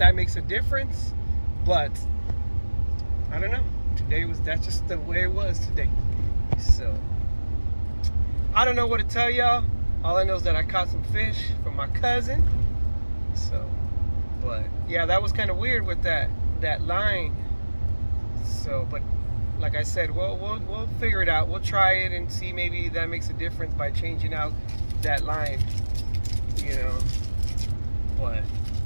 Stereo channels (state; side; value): inverted; both; correlation -1.00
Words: makes a difference. But I don't know. That's just the way it was today. So I don't know what to tell y'all. All I know is that I caught some fish from my cousin. So, but yeah, that was kind of weird with that line. So, but like I said, we'll figure it out. We'll try it and see, maybe that makes a difference by changing out that line, you know. But